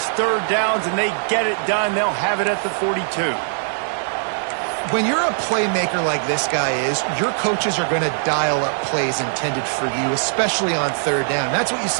third downs, and they get it done. They'll have it at the 42. When you're a playmaker like this guy is, your coaches are going to dial up plays intended for you, especially on third down. That's what you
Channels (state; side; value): silent; left; digital silence